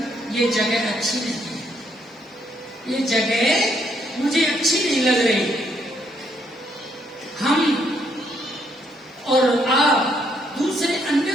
ये जगह अच्छी नहीं है, ये जगह मुझे अच्छी नहीं लग रही। हम और आप दूसरे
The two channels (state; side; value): normal; both; correlation 0.72